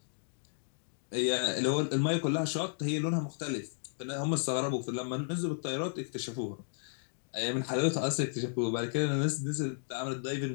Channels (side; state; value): right; silent; digital silence